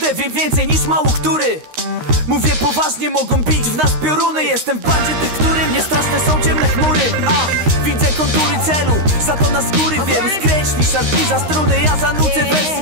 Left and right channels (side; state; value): left; late; 13 ms